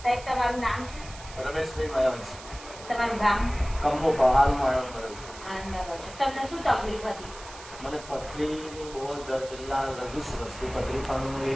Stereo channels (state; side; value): noise; right; hiss, 16 dB below the sound